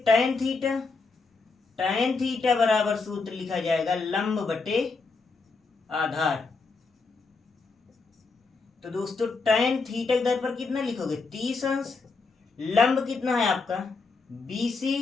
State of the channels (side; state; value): right; quieter; 4.2 dB